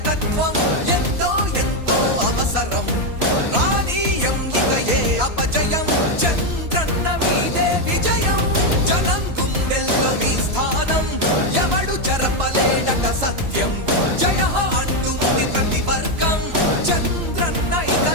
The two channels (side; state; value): left; late; 3.0 ms